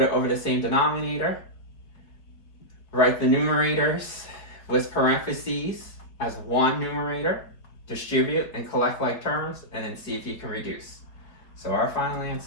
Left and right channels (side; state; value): right; late; 4.7 ms